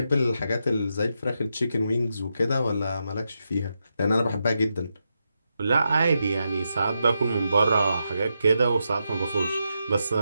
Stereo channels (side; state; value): both; inverted; correlation -0.85